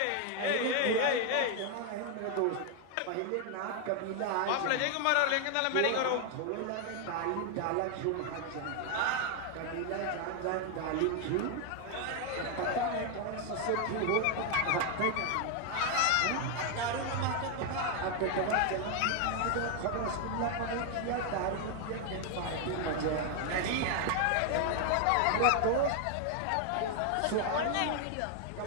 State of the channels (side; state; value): both; different; correlation 0.00